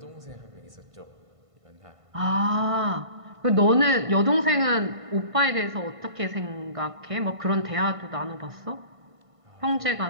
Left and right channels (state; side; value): late; left; 1.5 ms